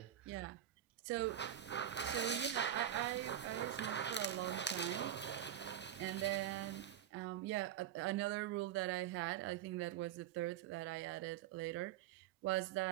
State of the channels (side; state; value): left; quieter; 10.8 dB